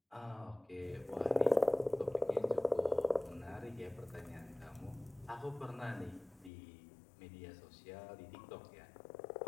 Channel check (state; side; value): drops out; right; at 6.5 s